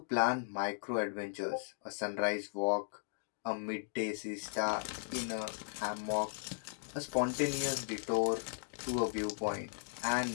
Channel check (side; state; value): right; silent; digital silence